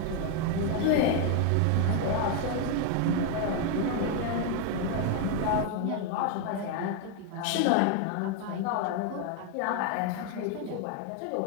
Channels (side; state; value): both; different; correlation 0.01